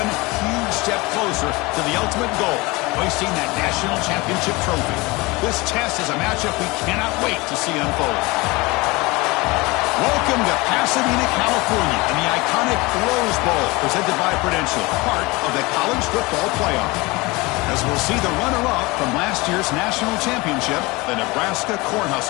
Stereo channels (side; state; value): right; quieter; 23.7 dB